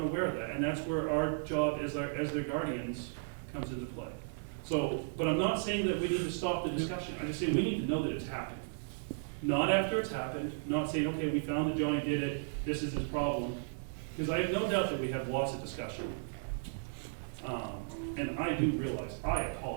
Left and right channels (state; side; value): silent; left; digital silence